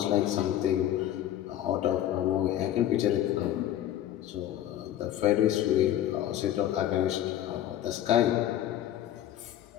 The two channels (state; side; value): quieter; right; 12.0 dB